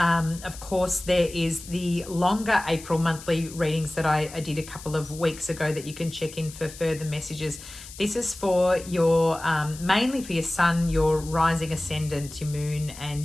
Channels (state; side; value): noise; left; hiss, 15 dB below the sound